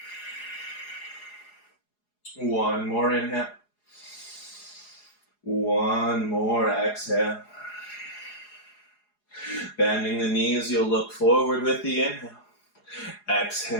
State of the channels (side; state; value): right; late; 4.8 ms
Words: One more inhale. One more exhale. Bending the knees, you'll look forward with the inhale.